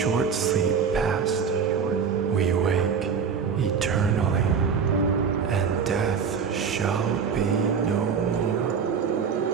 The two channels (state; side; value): quieter; left; 6.3 dB